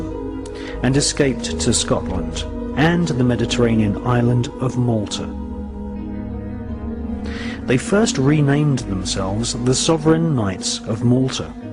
and escaped to Scotland and the Mediterranean island of Malta. They first renamed themselves the Sovereign Knights of Malta,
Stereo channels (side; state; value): both; identical; correlation 1.00